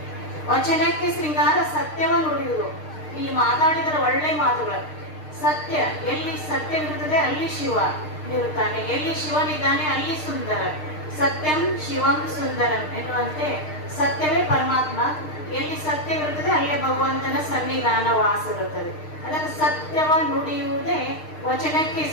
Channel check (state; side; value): late; right; 6.6 ms